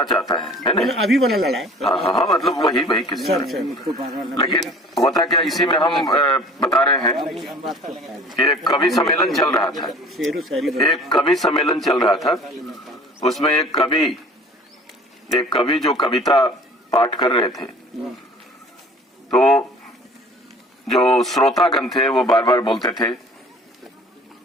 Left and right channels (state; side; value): normal; both; correlation 0.47